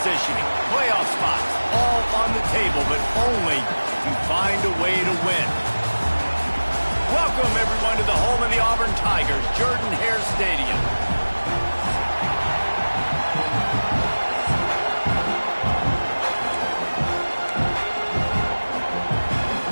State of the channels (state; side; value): inverted; both; correlation -1.00